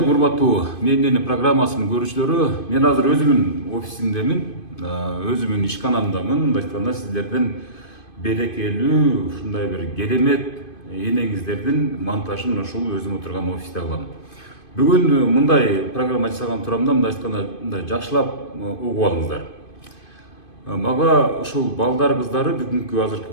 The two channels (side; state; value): right; late; 2.5 ms